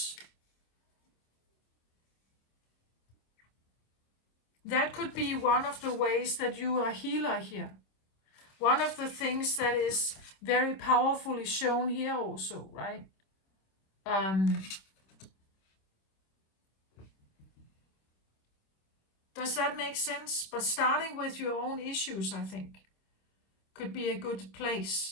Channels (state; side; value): late; right; 26 ms